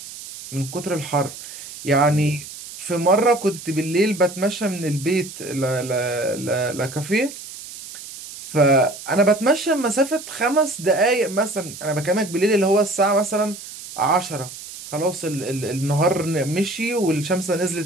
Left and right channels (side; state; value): right; noise; hiss, 13 dB below the sound